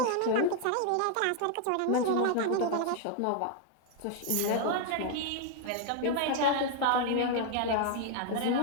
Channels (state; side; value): different; both; correlation 0.00